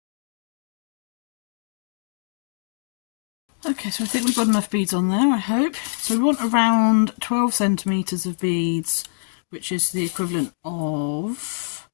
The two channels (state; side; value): silent; right; digital silence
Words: Okay, so I think we've got enough beads on there, I hope. So we want around 12 centimetres of beads, which is the equivalent of